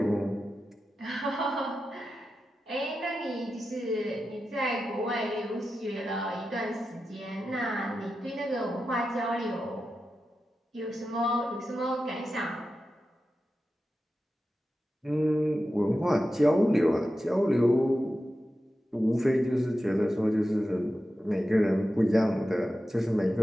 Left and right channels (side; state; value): both; normal; correlation 0.91